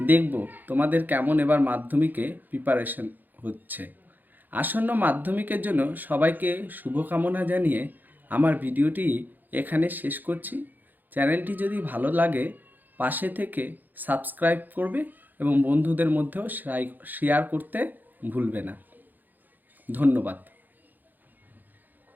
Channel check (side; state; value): left; late; 0.086 ms